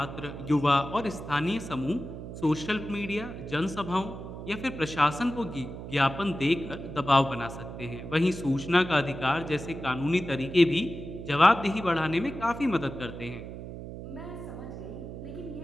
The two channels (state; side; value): noise; right; hum, 10 dB below the sound